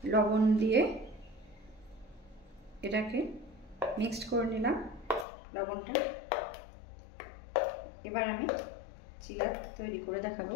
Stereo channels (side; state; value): right; drops out; at 5.2 s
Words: লবণ দিয়ে এটাকে মিক্সড করে নিলাম, লবণটা। এবার আমি চিলা তৈরি করে দেখাবো।